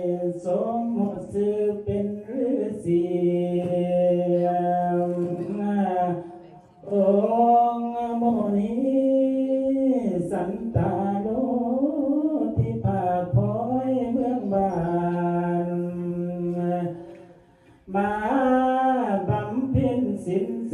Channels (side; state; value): both; identical; correlation 1.00